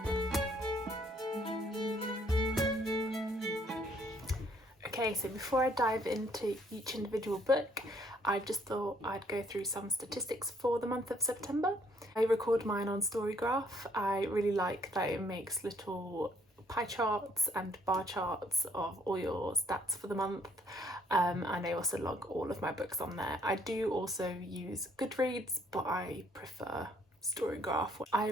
Okay, so before I dive into each individual book, I just thought I'd go through some statistics for the month of September. I record mine on Storygraph. I really like that it makes little pie charts and bar charts of all your stats for the month, and I also log all of my books on there. I do also use Goodreads, but I prefer Storygraph. I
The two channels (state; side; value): normal; both; correlation 0.66